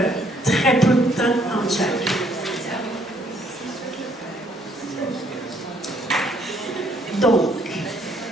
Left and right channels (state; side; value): normal; both; correlation 0.67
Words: très peu de temps entre chaque. Donc,